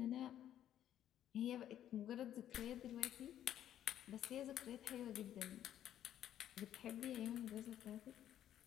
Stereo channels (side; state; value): right; quieter; 11.2 dB